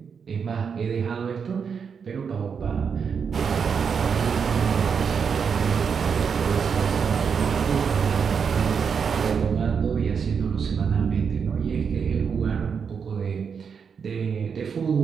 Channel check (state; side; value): quieter; left; 6.4 dB